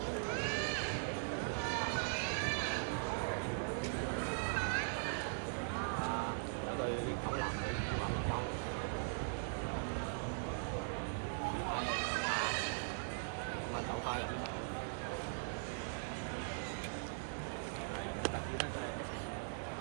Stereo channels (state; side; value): silent; left; digital silence